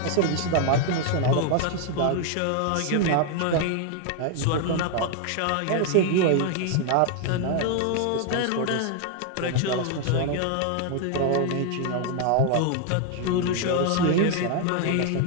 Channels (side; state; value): both; different; correlation 0.00